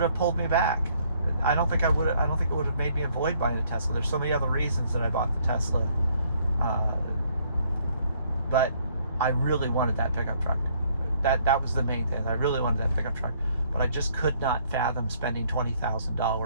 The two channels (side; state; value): both; inverted; correlation -0.65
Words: have pulled me back. I don't think it would have made me avoid buying a Tesla. There's so many other reasons that I bought the Tesla. But I really wanted that pickup truck. That was the main thing. I really wanted that pickup truck. But I just could not fathom spending